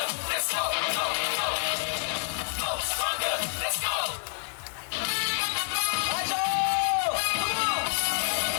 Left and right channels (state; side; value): silent; right; digital silence